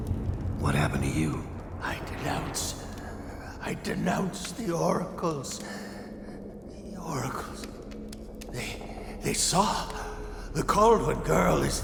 What happened to you? I denounce the oracles. The oracles. They saw. The Caldwell girl is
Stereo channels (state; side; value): identical; both; correlation 1.00